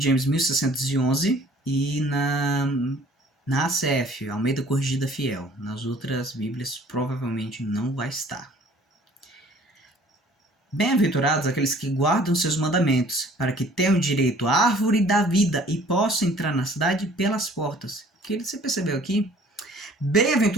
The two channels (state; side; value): normal; both; correlation 0.53